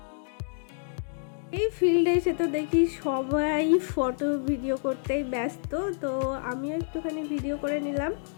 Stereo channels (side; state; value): right; silent; digital silence